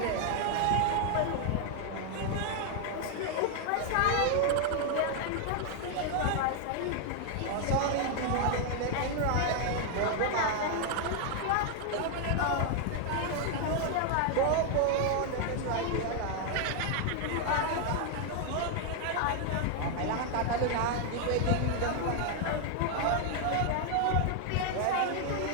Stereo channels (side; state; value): both; different; correlation 0.00